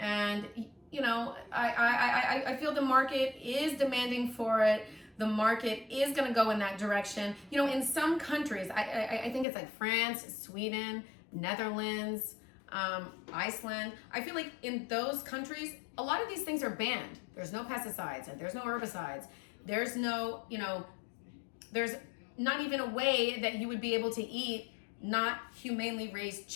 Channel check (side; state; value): right; drops out; at 9.5 s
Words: you know, I feel the market is demanding for it. The market is gonna go in that direction. You know, in some countries, I think it's like France, Sweden, Netherlands, Iceland. I feel like in those countries, a lot of these things are banned. There's no pesticides, and there's no herbicides. There's no, you know, there's not even a way that you would be able to eat not humanely raised